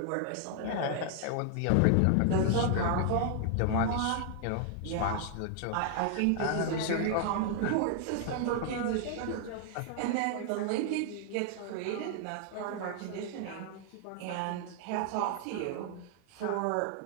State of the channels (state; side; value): different; both; correlation 0.00